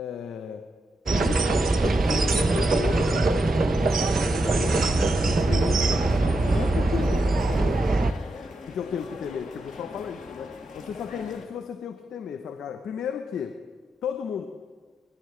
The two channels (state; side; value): normal; both; correlation 0.85